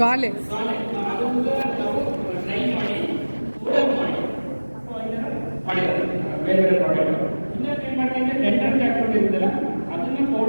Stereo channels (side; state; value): both; inverted; correlation -1.00